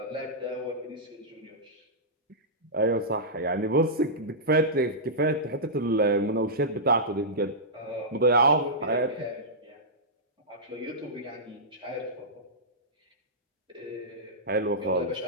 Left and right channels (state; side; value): normal; both; correlation -0.13